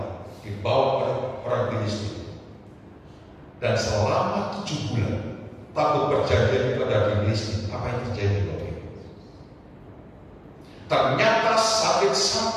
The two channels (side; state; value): both; identical; correlation 1.00